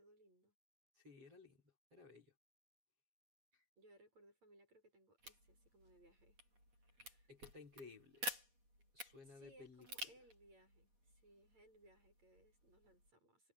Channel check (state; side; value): late; left; 8.4 ms